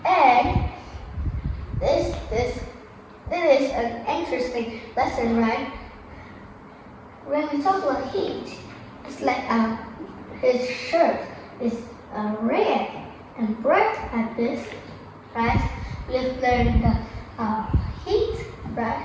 And this is an interesting lesson, right? When we talk about heat, it's like his shirt is red and bright like this, right? We have learned the heat, right?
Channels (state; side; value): identical; both; correlation 1.00